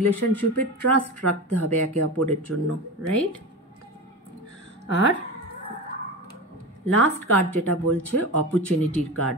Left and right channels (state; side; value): normal; both; correlation 0.25